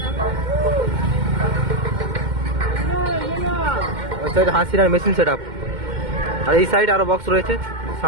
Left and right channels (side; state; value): left; late; 2.1 ms